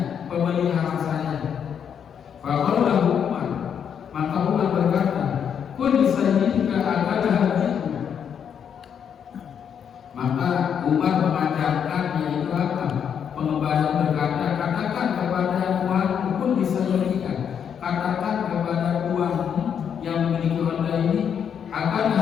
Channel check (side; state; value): right; quieter; 7.9 dB